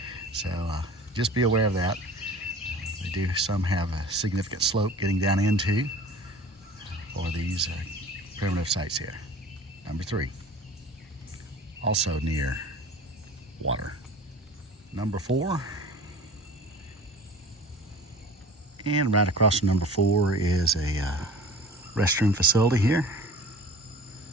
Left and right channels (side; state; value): both; normal; correlation 0.42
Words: so just be aware of that. They do some have a significant slope getting down into for these primitive sites here. Number 3, also near water. Number 4, and right across from number 4 is a restroom facility here.